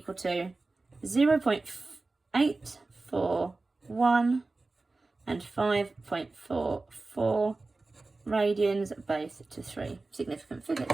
to 0.841 and 5.44 radians, both to 3 significant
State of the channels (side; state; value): left; quieter; 3.4 dB